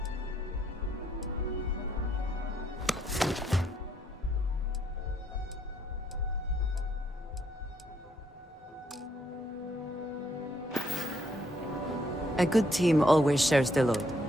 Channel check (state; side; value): normal; both; correlation 0.72